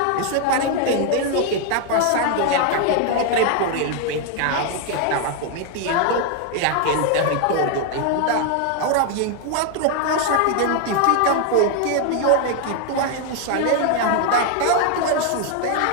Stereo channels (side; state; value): both; different; correlation 0.00